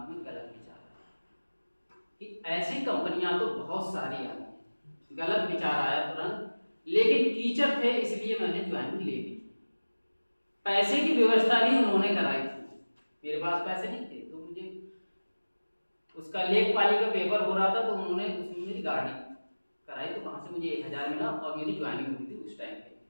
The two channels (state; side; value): inverted; both; correlation -1.00